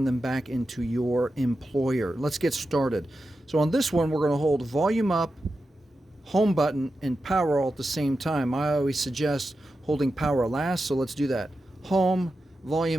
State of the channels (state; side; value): normal; both; correlation 0.90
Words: them back into your employer. Let's get started. So on this one, we're going to hold volume up, home button, and power all at the same time. I always suggest holding power last, so let's do that. Home,